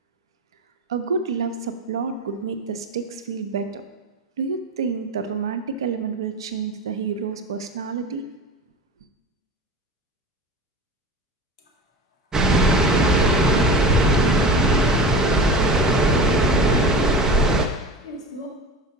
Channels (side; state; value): both; normal; correlation 0.30